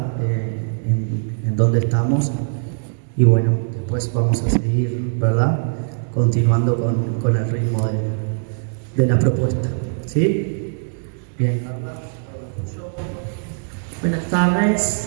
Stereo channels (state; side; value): silent; left; digital silence